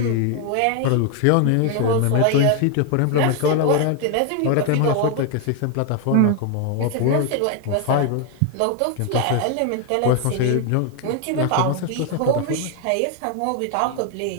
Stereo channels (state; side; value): different; both; correlation 0.00